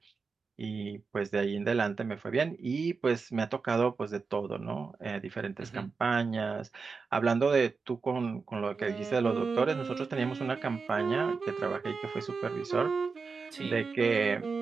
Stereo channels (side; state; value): left; quieter; 4.8 dB